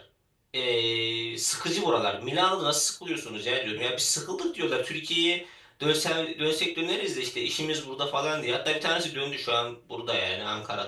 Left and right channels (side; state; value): both; identical; correlation 1.00